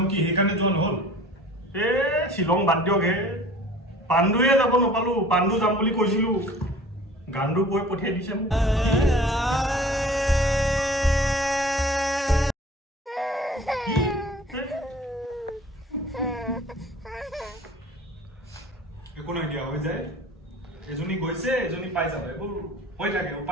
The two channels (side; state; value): both; normal; correlation 0.46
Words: কি সেইকাৰণে যোৱা নহ'ল শ্বিলং বাদ দিয়ক হে পাণ্ডুৱে যাব নাপালো পাণ্ডু যাম বুলি কৈছিলো গাণ্ডু কৈ পঠিয়াই দিছে মোক একো নাই দিয়া হৈ যায় এজনী গৈছে এজনী পাই যাব এইবোৰ হৈ থাকে